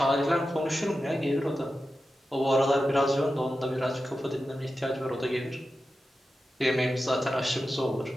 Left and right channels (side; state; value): both; normal; correlation 0.92